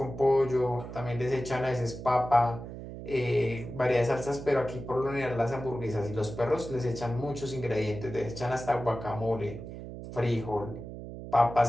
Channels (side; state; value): right; noise; hum, 10 dB below the sound